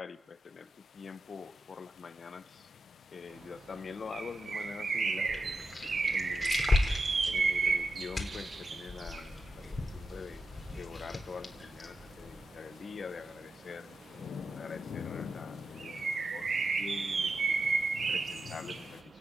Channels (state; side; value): normal; both; correlation 0.88